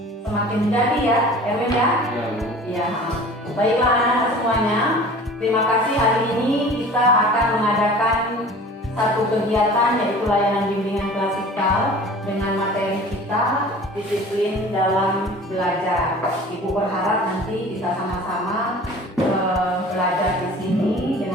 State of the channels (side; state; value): both; normal; correlation 0.43